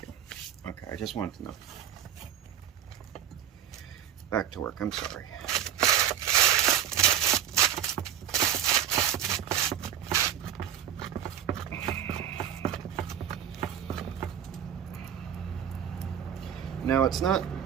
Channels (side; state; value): left; quieter; 9.9 dB